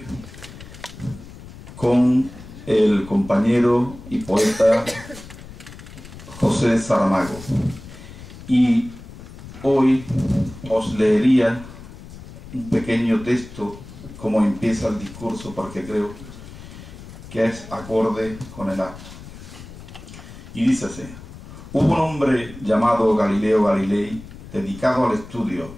con el compañero y poeta José Saramago. Y hoy os leería un pequeño texto como empieza el discurso, porque creo que es acorde con el acto. Y dice así: hubo un hombre llamado Galileo Galilei, dedicado al estudio,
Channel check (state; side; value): noise; left; rumble, 16 dB below the sound